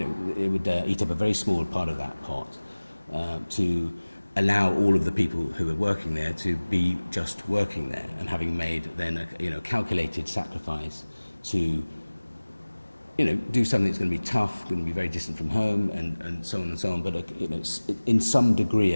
would eat up a very small part of that pot to allow all of the people who are working there to be just working there, and having made then a calculated sacrifice to do something that's going to be tough, going to be very distant from home, and so on and so on, but in some degree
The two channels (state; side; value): inverted; both; correlation -1.00